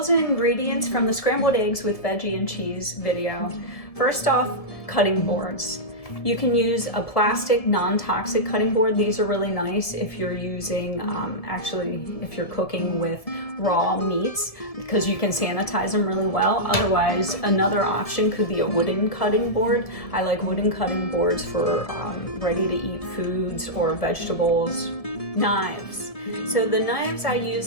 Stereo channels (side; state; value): right; late; 1.7 ms